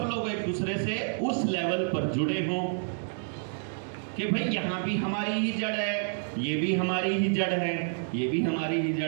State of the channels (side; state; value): left; silent; digital silence